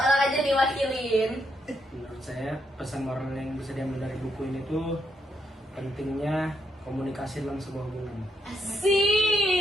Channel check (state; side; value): normal; both; correlation 0.78